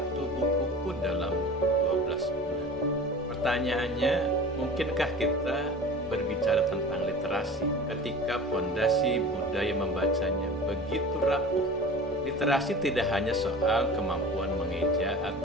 buku pun dalam 12 bulan. Pertanyaannya, mungkinkah kita berbicara tentang literasi ketika pondasi budaya membacanya begitu rapuh? Literasi tidak hanya soal kemampuan mengeja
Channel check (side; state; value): both; normal; correlation 0.38